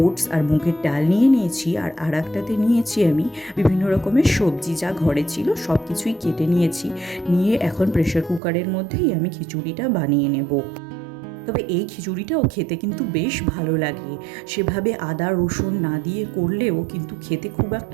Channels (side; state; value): left; drops out; at 8.4 s